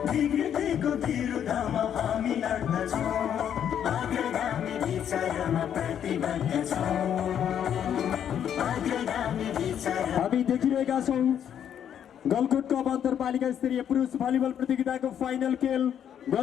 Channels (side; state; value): right; quieter; 9.2 dB